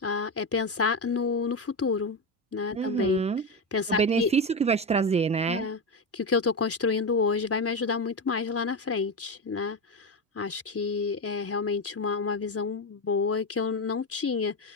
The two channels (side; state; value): both; normal; correlation 0.14